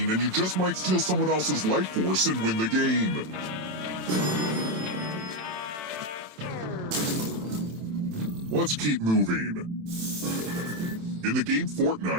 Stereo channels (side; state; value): left; late; 27 ms